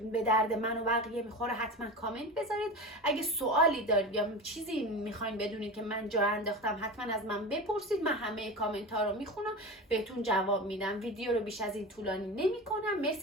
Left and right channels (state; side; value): normal; both; correlation 0.27